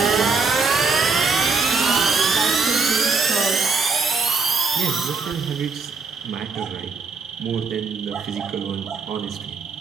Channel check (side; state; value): left; quieter; 4.5 dB